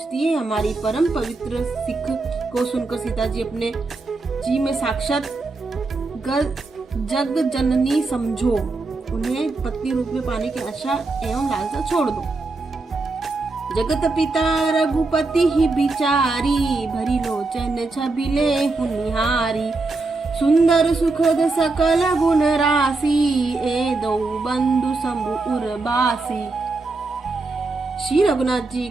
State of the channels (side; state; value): left; quieter; 3.5 dB